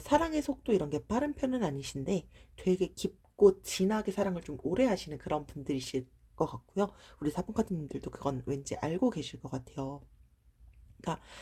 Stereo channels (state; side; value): identical; both; correlation 1.00